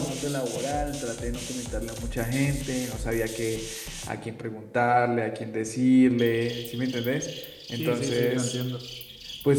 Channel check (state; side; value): identical; both; correlation 1.00